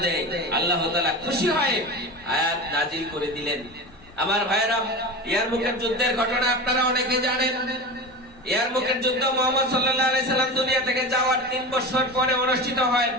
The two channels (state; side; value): normal; both; correlation 0.28